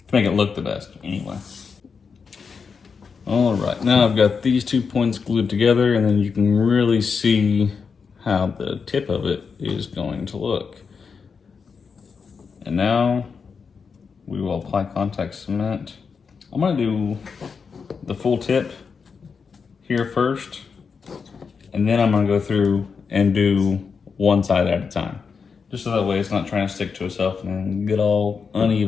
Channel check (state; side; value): quieter; right; 5.6 dB